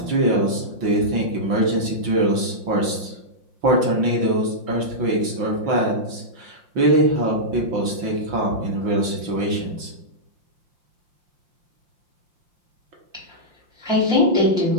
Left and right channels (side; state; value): left; late; 6.0 ms